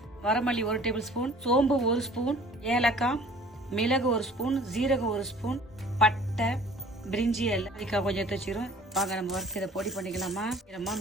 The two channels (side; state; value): both; normal; correlation 0.50